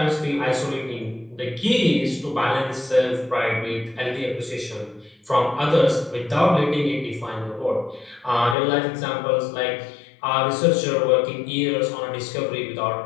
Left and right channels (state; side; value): drops out; right; at 8.6 s